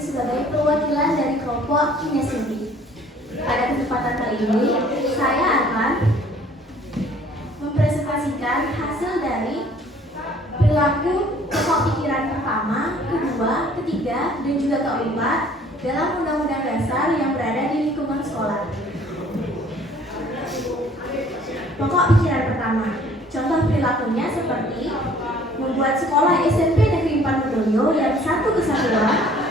perwakilan dari kelompok kinestetik. Pada kesempatan kali ini, saya akan mempresentasikan hasil dari perilaku pokok pikiran pertama, kedua, ketiga, dan juga keempat dalam Undang-Undang Dasar yang berada di lingkungan sekolah. Pokok pikiran pertama, contoh perilakunya seperti membuat sekolah SMP Negeri 4 Medoyo yang satu kesatuan,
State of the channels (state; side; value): normal; both; correlation 0.56